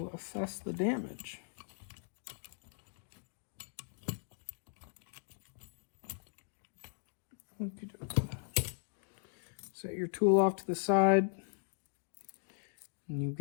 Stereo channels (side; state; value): right; silent; digital silence